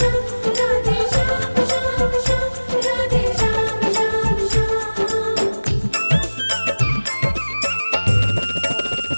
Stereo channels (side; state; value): both; inverted; correlation -1.00